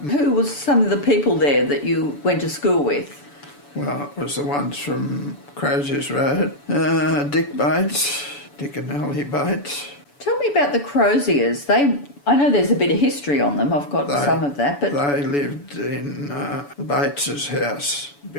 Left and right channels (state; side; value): late; right; 7.0 ms